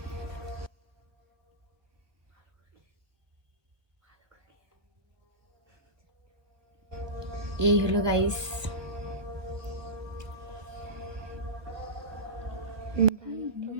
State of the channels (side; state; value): left; late; 1.4 ms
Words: এই হলো গাইস